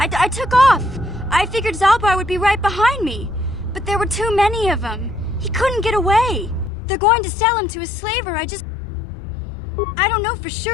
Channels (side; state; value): right; drops out; at 6.7 s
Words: took off. I figured Zalbar would be right behind me. But there were too many of them. He couldn't get away. They're going to sell him to a slaver. I don't know for